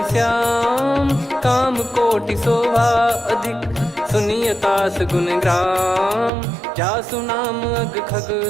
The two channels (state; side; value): drops out; left; at 6.3 s